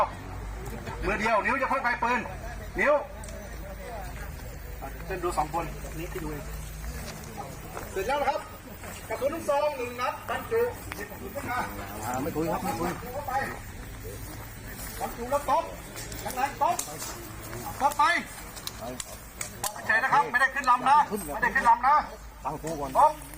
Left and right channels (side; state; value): both; identical; correlation 1.00